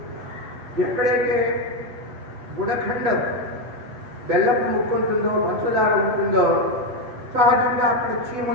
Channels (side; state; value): left; late; 8.1 ms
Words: ఎక్కడైతే గుడఖండం బెల్లపు ముక్కు ఉంటుందో, పంచదార ఉంటుందో, సహజంగా అక్కడ